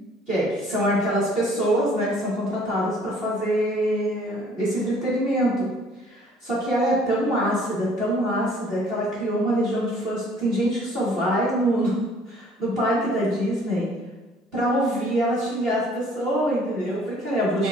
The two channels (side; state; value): both; normal; correlation 0.57